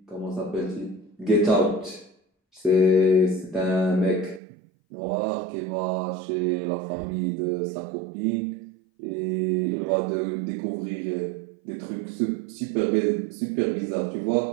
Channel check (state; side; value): drops out; left; at 4.4 s